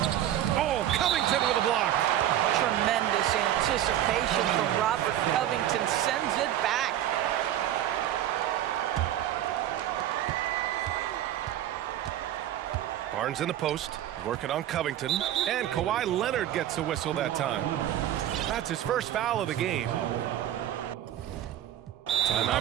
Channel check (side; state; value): left; quieter; 12.0 dB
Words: Oh, Covington with a block. Tremendous anticipation from Robert Covington. Sends it back. Barnes in the post. Working on Covington. And Kawhi Leonard gets a whistle that time. That's his first foul of the game.